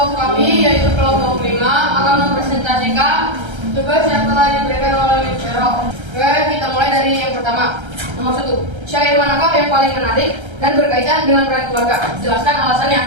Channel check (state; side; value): late; left; 1.3 ms